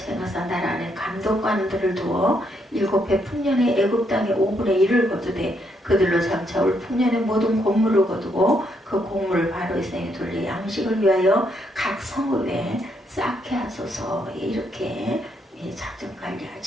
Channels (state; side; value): normal; both; correlation 0.75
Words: 행하사 나라 안에 감독관들을 두어 7해 풍년에 애굽 땅의 5분의 1을 거두되 그들로 장차올 풍년의 모든 곡물을 거두고 그 곡물을 바로의 성에 돌려 양식을 위하여 각 성읍에 쌓게 하소서. 이렇게 작전